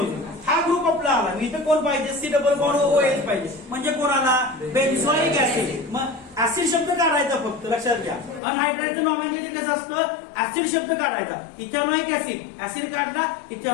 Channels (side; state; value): right; drops out; at 8.4 s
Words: हा ग्रुप आपला आला. इथं कोण पाहिजे? C double bond O H पाहिजे. म्हणजे कोण आला? बेन्झोइक ऍसिड. मग ऍसिड शब्द काढायचा फक्त. लक्षात घ्या, अनहायड्राइडचं नॉमेनक्लेचर कसं असतं? ऍसिड शब्द काढायचा. इथेनॉइक ऍसिड, ऍसिड काढला,